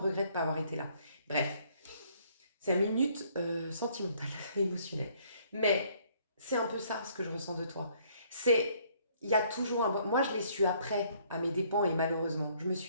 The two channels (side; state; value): both; inverted; correlation -0.64